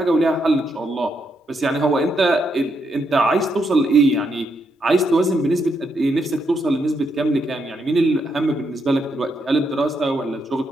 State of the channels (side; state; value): both; normal; correlation 0.79